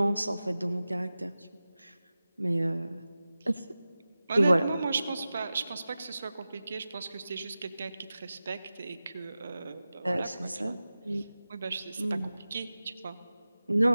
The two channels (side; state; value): both; inverted; correlation -0.95